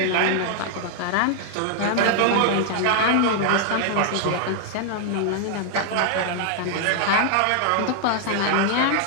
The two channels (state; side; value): different; both; correlation 0.00